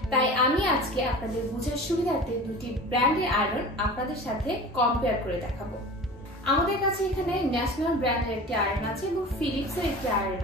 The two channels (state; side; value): normal; both; correlation 0.37